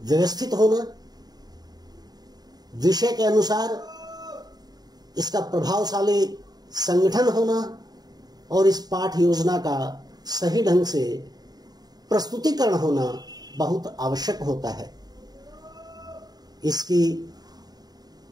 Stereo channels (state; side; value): late; left; 0.19 ms